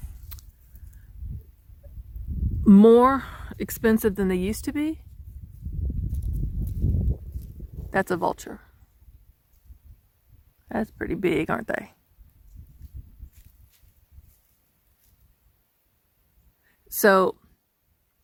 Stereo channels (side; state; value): both; identical; correlation 1.00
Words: more expensive than they used to be. That's a vulture. That's pretty big, aren't they? So